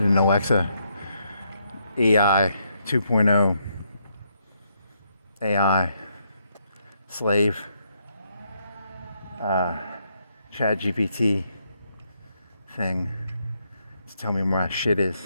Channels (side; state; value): both; inverted; correlation -0.77